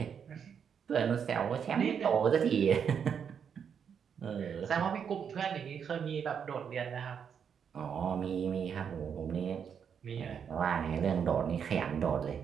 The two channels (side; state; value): left; quieter; 7.4 dB